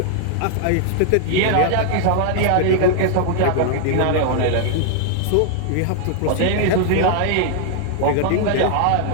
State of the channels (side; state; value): both; different; correlation 0.00